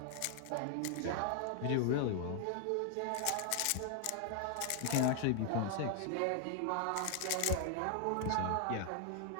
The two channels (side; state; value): both; different; correlation 0.00